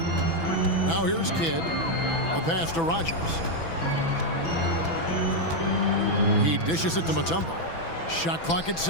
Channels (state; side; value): late; right; 6.0 ms